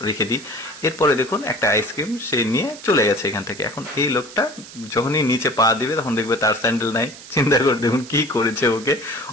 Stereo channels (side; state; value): right; noise; hiss, 17 dB below the sound